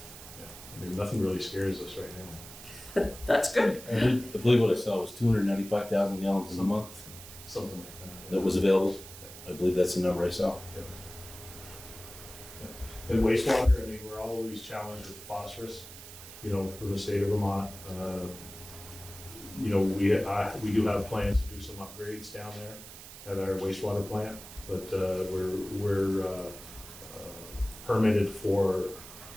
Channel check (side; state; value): right; noise; hiss, 15 dB below the sound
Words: Yeah, I mean, nothing really scares us right now. That's good. I believe what I saw was 295,000 gallons in a month Something like that. that was available. I believe that's the number I saw. And wastewater, I mean, we're always challenged with phosphorus, you know, from the state of Vermont. You know, we do have plans to do some upgrades down there at our wastewater plant, but we're permitted for,